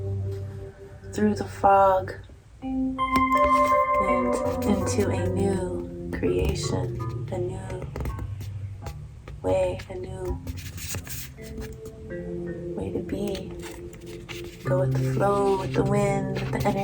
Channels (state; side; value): identical; both; correlation 1.00